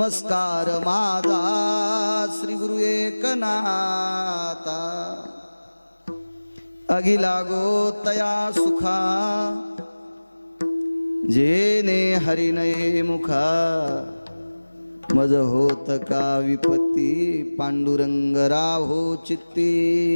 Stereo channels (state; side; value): inverted; both; correlation -1.00